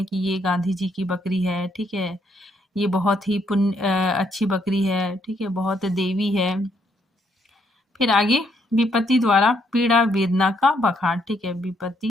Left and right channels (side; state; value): both; normal; correlation 0.73